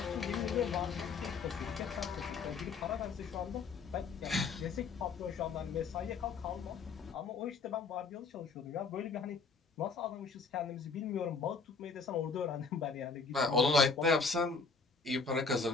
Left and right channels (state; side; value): quieter; right; 4.7 dB